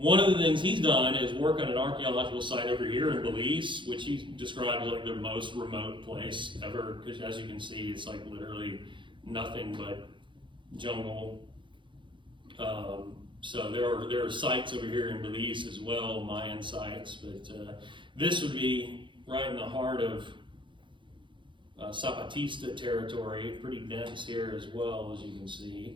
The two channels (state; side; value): late; left; 0.23 ms